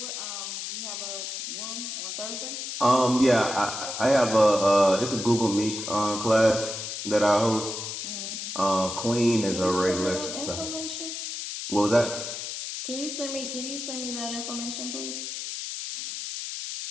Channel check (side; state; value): left; noise; hiss, 6 dB below the sound